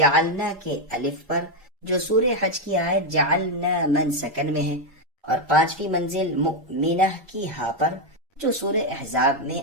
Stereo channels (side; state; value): left; late; 1.4 ms